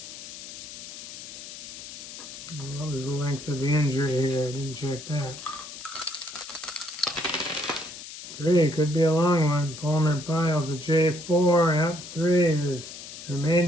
What was the length of the injury here? I didn't check that. 3, could be a long one. Palmer Pyle's a J4. Yep, 3 is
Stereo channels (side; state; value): left; noise; hiss, 12 dB below the sound